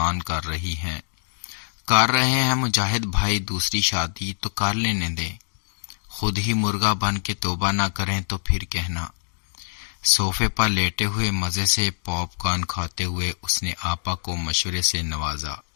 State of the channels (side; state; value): right; silent; digital silence